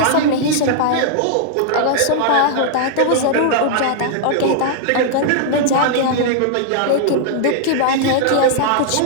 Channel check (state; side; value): different; both; correlation -0.01